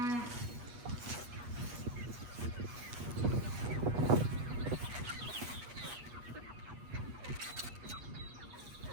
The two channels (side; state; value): left; late; 8.3 ms